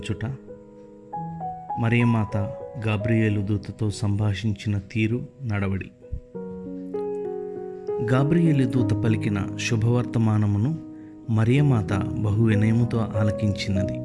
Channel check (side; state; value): both; identical; correlation 1.00